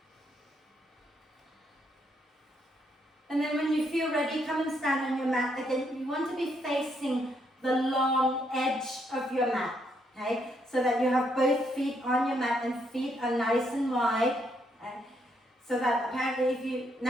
And then when you feel ready, come and stand on your mat. Again, you want to be facing the long edge of your mat, okay? So that you have both feet on your mat and feet are nice and wide. Okay? So that apparently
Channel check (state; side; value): normal; both; correlation 0.75